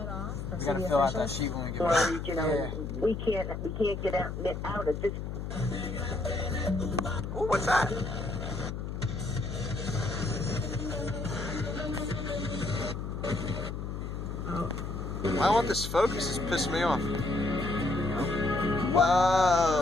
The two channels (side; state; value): left; noise; hum, 5 dB below the sound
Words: off. We gotta fill out that sheet when we get back. Or, you know, we can't get out of this. Ooh, what's that? Why won't this focus? It's pissing me off.